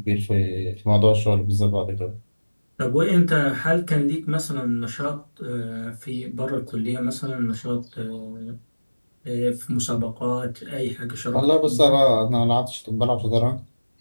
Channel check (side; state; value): both; inverted; correlation -1.00